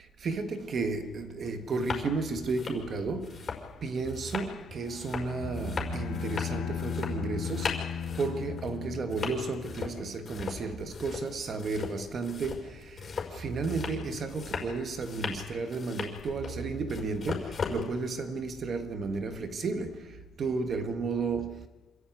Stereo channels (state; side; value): normal; both; correlation 0.70